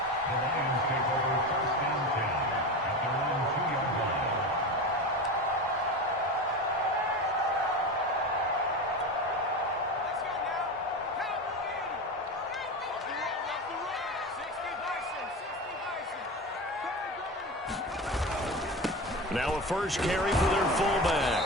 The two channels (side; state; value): both; normal; correlation 0.25